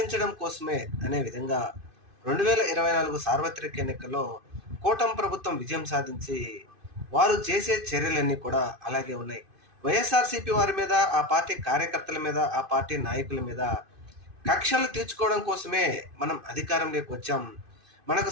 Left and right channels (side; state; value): left; late; 2.5 ms